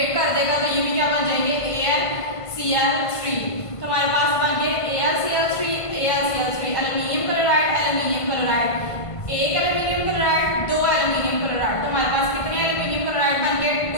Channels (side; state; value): right; late; 1.5 ms